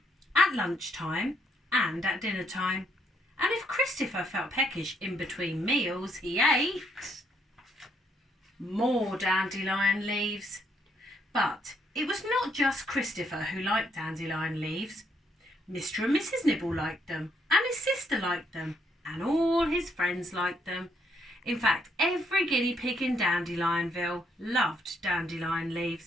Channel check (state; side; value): normal; both; correlation 0.72